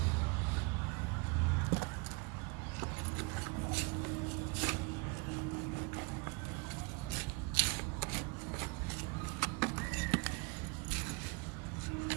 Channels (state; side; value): quieter; left; 29.4 dB